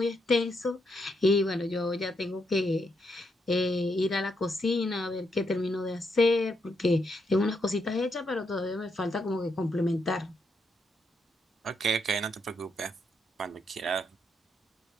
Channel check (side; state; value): both; normal; correlation 0.79